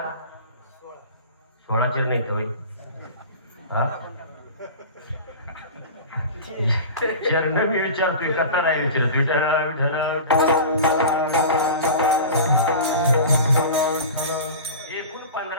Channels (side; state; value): both; inverted; correlation -0.33